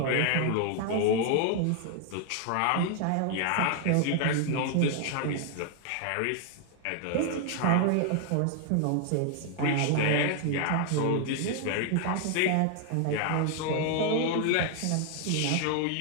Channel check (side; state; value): both; different; correlation 0.00